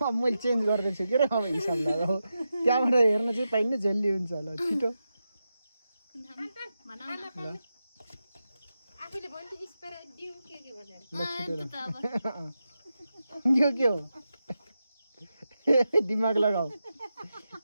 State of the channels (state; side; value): inverted; both; correlation -0.89